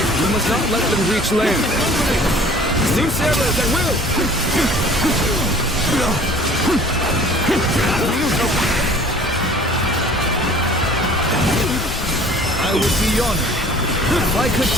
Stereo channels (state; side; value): normal; both; correlation 0.49